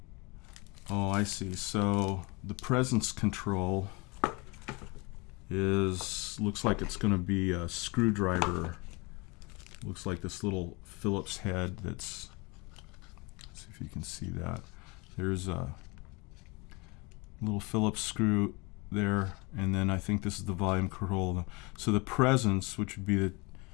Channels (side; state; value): right; quieter; 27.3 dB